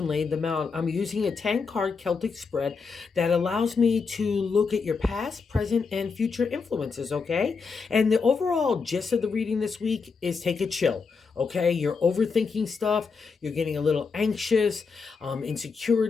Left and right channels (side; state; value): right; quieter; 5.0 dB